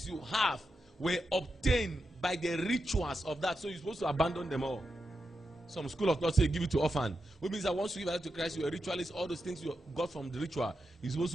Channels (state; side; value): normal; both; correlation 0.87